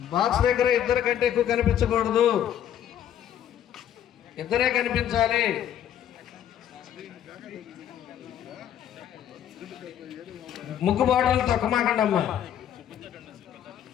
బాక్స్ దగ్గర ఇద్దరు కంటే ఎక్కువ కనిపించకూడదు, ఇద్దరే కనిపించాలి. ముగ్గు బాటలు తొక్కమాకండి అమ్మా,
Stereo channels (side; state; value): right; quieter; 10.3 dB